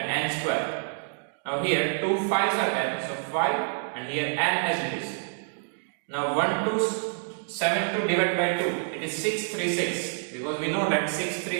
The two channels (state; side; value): silent; left; digital silence